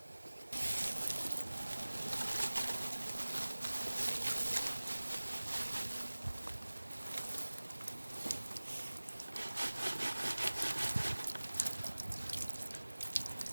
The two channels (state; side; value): inverted; both; correlation -1.00